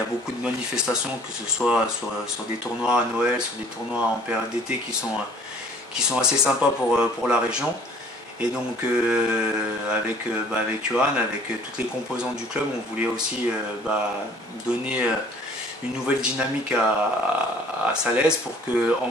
beaucoup de manifestations, que ce soit sur des tournois à Noël, sur des tournois en période d'été qui sont assez sympas pour la région. Et donc avec Johan, avec toutes les composantes du club, on voulait aussi donner une nouvelle dynamique à Salaise, pour que, en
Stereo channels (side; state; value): both; normal; correlation 0.54